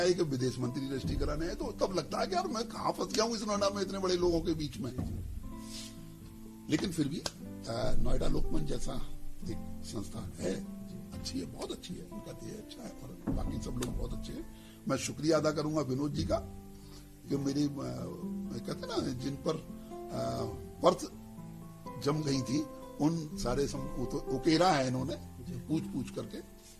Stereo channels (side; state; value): both; identical; correlation 1.00